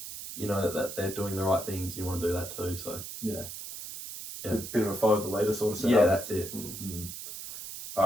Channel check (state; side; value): noise; right; hiss, 9 dB below the sound